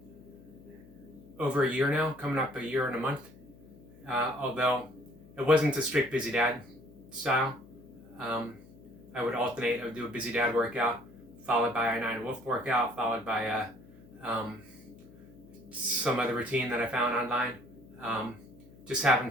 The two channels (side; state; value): left; noise; hum, 22 dB below the sound